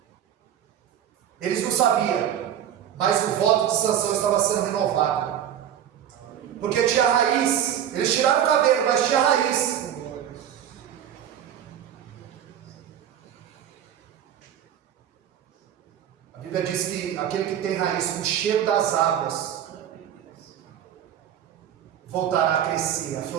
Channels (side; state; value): left; quieter; 10.0 dB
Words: Eles não sabiam, mas o voto de Sansão estava sendo renovado. Porque tinha raiz. Eles tiraram o cabelo, mas tinha raiz. A Bíblia diz que aquele que tem raiz com o cheiro das águas voltará a crescer, a